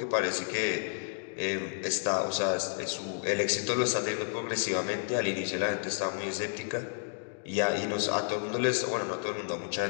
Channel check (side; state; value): right; silent; digital silence